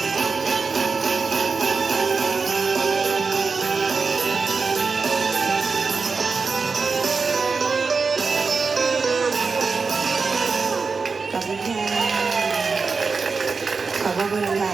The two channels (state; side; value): quieter; left; 4.7 dB